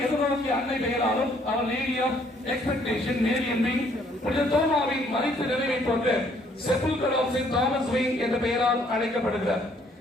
எதிர்நோக்கிய அன்னை பெயராலும் அவர் நேரியம் எக்ஸ்பெக்டேஷன் நேரியன் விங், புனித தோமாவின் மறைத்து நிறைவை போன்ற செப்புல்கர் ஆஃப் செயின்ட் தாமஸ் விங் என்ற பெயரால் அழைக்கப்படுகிறார்.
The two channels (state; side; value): normal; both; correlation 0.64